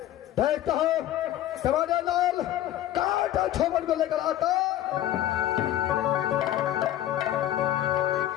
देखता हूं टमाटर लाल काटा छोपन को लेकर आता।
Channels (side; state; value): right; quieter; 12.7 dB